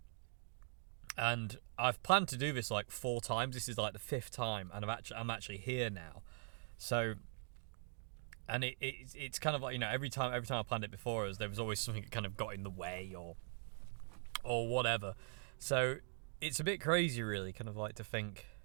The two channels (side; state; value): left; silent; digital silence